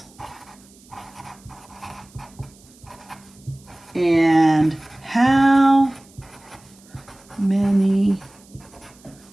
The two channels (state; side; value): noise; right; hiss, 27 dB below the sound